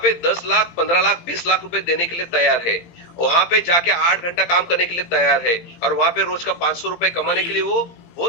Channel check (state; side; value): late; right; 18 ms